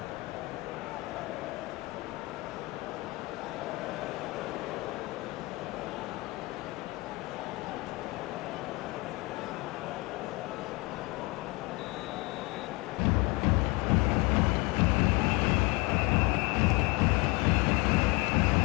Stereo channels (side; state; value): right; quieter; 24.5 dB